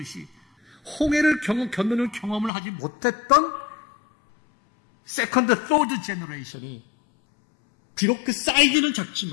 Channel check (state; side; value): drops out; right; at 2.5 s